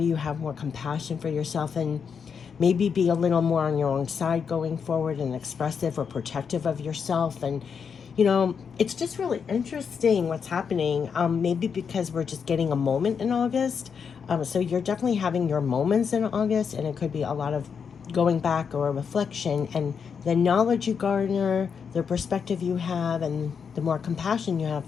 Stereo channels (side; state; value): right; quieter; 6.5 dB